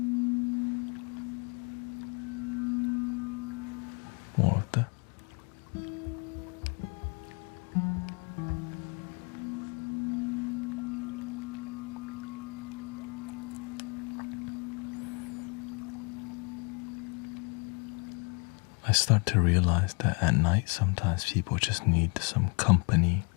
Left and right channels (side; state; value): right; quieter; 32.2 dB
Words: More of that. I start to realize that at night sometimes people just need some company